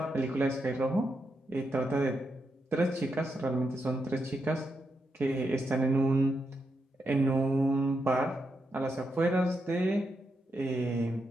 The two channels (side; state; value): both; normal; correlation 0.84